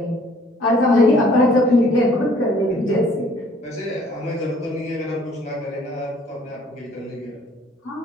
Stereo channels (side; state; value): both; normal; correlation 0.58